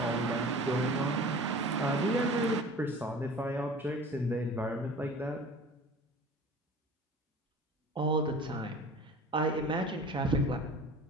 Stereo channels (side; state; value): both; normal; correlation 0.41